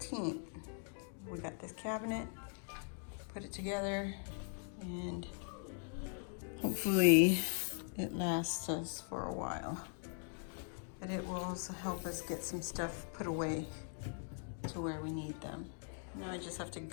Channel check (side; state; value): right; silent; 51 dB below the other